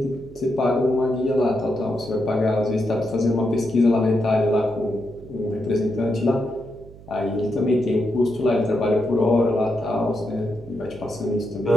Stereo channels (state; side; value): noise; right; hum, 19 dB below the sound